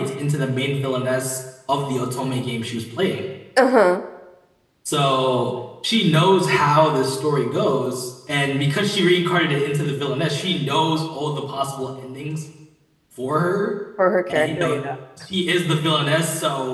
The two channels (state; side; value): identical; both; correlation 1.00